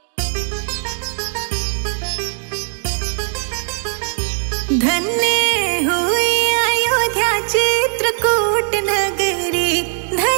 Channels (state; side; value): silent; left; 61 dB below the other